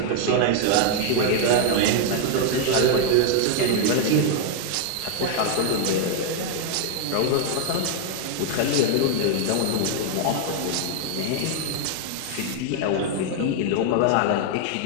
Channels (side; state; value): both; different; correlation 0.00